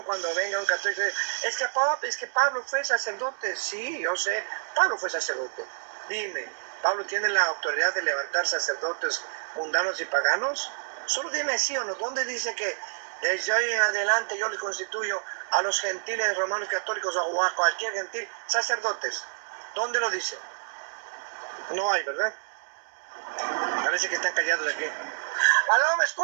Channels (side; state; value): left; silent; digital silence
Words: cuando venga un católico. Es que Pablo fue sacerdote. Sí, yo sé, Pablo fue sacerdote. Dime, ¿Pablo tiene la autoridad de levantar sacerdotes mundanos y paganos? Solo dime sí o no. ¿Dónde dice que desde hoy en adelante yo le constituyo a los gentiles romanos católicos o a cualquier gentil sacerdotes? ¿Dónde lo dice? No hay, ¿verdad? Parece que están callados aquí. ¿Aló, me